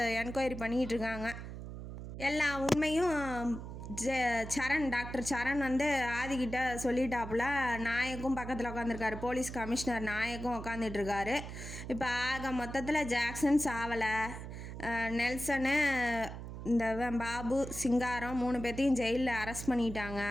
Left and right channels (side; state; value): right; noise; hum, 9 dB below the sound